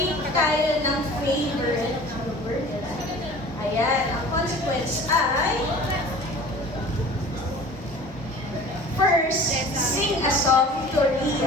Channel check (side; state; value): both; normal; correlation 0.43